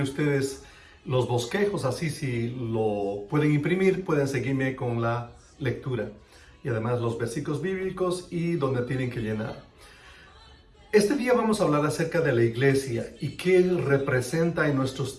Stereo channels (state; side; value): identical; both; correlation 1.00